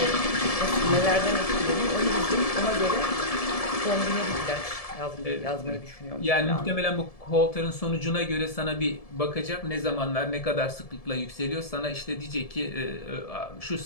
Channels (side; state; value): right; late; 1.7 ms